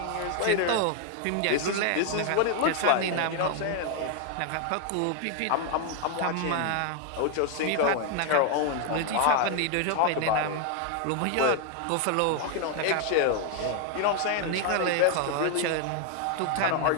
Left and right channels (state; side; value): different; both; correlation 0.00